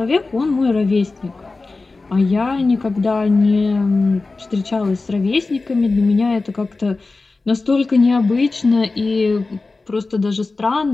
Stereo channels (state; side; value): quieter; right; 3.6 dB